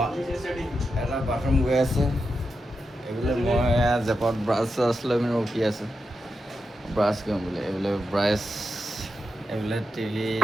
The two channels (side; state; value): both; normal; correlation 0.88